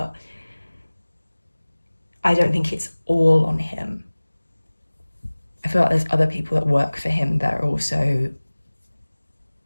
I don't think it's all on him. I feel like there's other people that work for him that are also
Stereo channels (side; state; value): both; inverted; correlation -1.00